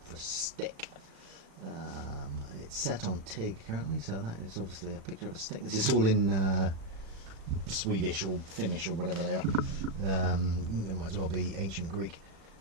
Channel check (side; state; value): left; late; 36 ms